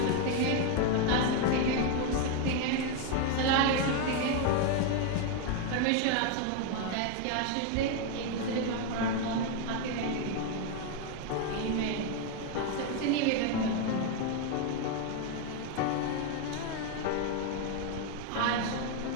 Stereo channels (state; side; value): different; both; correlation 0.01